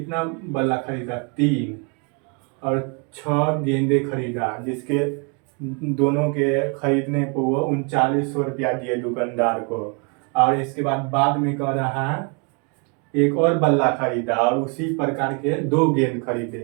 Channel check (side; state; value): left; quieter; 35.4 dB